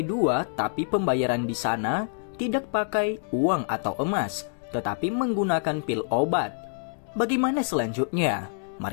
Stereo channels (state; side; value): silent; right; digital silence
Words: 2, tapi pembayaran di sana tidak pakai uang atau emas, tetapi menggunakan pil obat. Bagaimana selanjutnya?